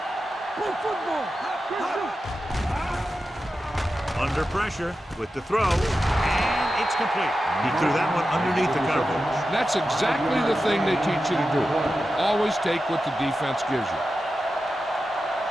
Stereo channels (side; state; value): both; normal; correlation 0.91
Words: Play football. Under pressure with the throw. And it's complete. He threw that one underneath the coverage. That's exactly the thing they teach you to do. Always take what the defense gives you.